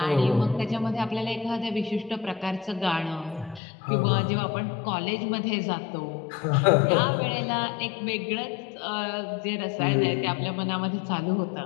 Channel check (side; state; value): right; drops out; at 3.6 s